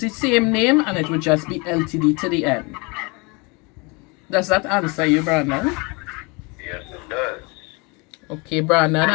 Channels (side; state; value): right; quieter; 28.8 dB